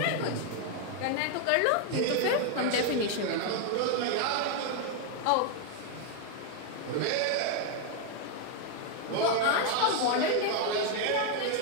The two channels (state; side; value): different; both; correlation 0.01